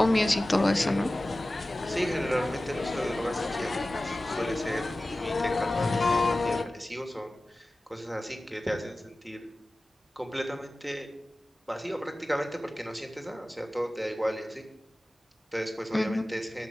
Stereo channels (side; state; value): both; normal; correlation 0.96